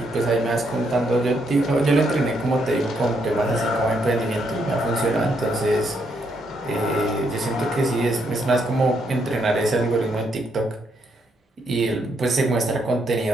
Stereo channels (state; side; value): normal; both; correlation 0.75